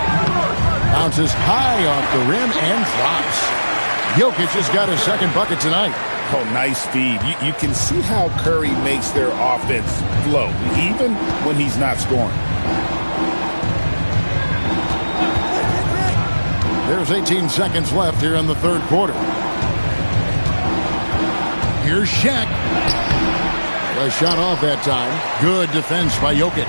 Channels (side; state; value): both; inverted; correlation -1.00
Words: Bounces high off the rim and drops. Jokic has got his second bucket tonight. Oh, nice speed. You can see how Curry makes their offense flow, even when he's not scoring. There's 18 seconds left here in the third quarter. Here's Shaq. A shot off that time. Good defense by Jokic.